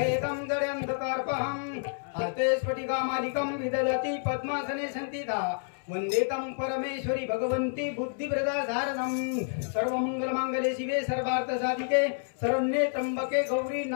जड्यन्धकार्पहं। हस्ते स्फटिकामालिकं विदधति पद्मासने संस्थिता वन्दे तं परमेश्वरी भगवन्ती बुद्धिप्रदा शारदं। सर्वमंगलमांगल्ये शिवे सर्वार्थसाधिके शरण्ये त्र्यंबके गौरी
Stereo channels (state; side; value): silent; right; 58 dB below the other